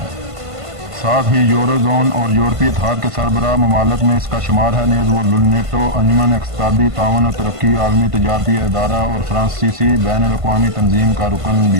ساتھ ہی یورو زون اور یورپی اتحاد کے سربراہ ممالک میں اس کا شمار ہے۔ نیز وہ نیٹو، انجمن اقتصادی تعاون و ترقی، عالمی تجارتی ادارہ اور فرانسیسی بین الاقوامی تنظیم کا رکن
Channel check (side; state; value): left; late; 1.5 ms